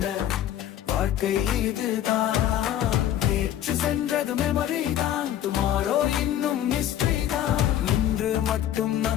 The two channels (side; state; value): right; quieter; 11.4 dB